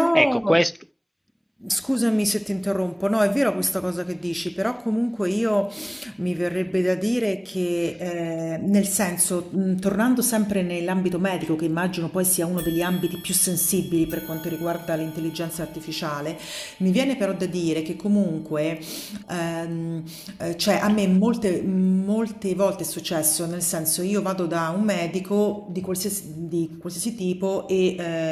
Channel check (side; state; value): both; identical; correlation 1.00